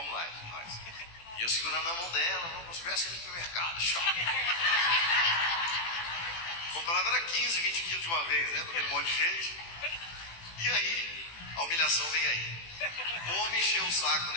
lá, nós. E eu segurando na mão dela, vamos ver assim no supermercado, comprava era 15, 20 quilos de uma vez, né? Porque um monte de gente. E aí, a humilhação veio aí. O homem encheu o saco do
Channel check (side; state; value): right; late; 18 ms